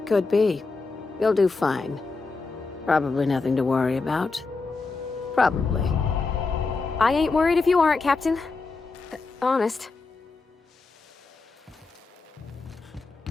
Could be. You'll do fine. Probably nothing to worry about. Probably. I ain't worried if you aren't, Captain. Honest.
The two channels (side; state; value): right; quieter; 4.0 dB